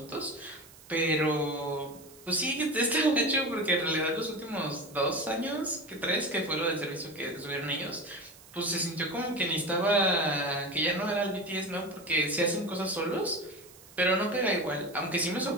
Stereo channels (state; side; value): noise; right; hiss, 22 dB below the sound